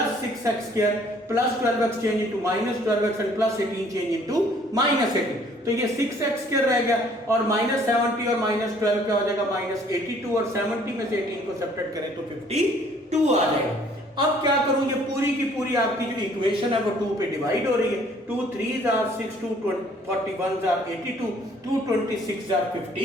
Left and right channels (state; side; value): normal; both; correlation 0.59